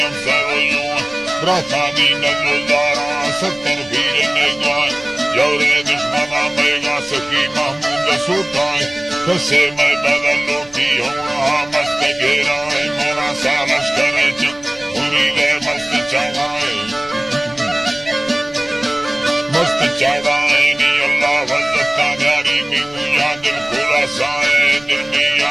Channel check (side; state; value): left; noise; rumble, 23 dB below the sound